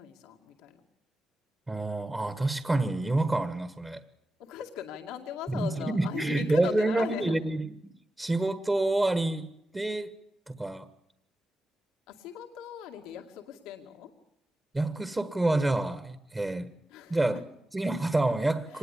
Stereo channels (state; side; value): normal; both; correlation 0.92